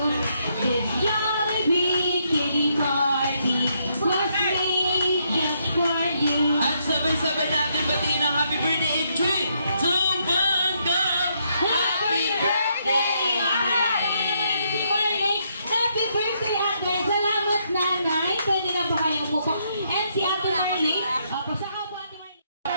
This Jollibee kitty party was made just for you. at sabay-sabay natin batiin ang happy birthday in 3, 2, 1, go! Happy birthday, Ate! Si Marley, happy birthday, Ate! Salamat, Nanay. Pwede na ba kayong umupo? And si Ate Marley, pasaka po Ate Marley.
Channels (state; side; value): inverted; both; correlation -0.75